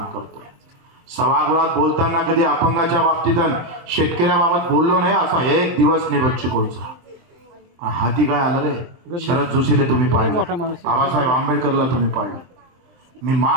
करतोय. सभागृहात बोलताना कधी अपंगाच्या बाबतीत शेतकऱ्याबाबत बोललो नाही असा एक दिवस नाही बच्चू कडूचा. हाती काय आलं रे, शरद जोशीले तुम्ही पाहिलं, बाबासाहेब आंबेडकरला तुम्ही पाहिलं. मी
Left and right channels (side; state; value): left; late; 23 ms